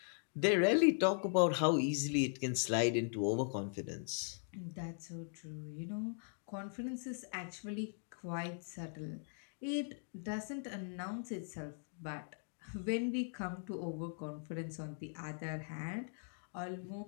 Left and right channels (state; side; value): silent; right; digital silence